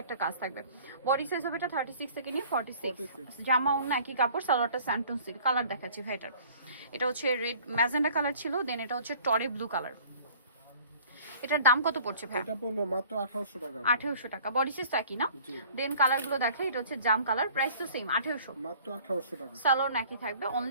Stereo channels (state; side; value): inverted; both; correlation -0.50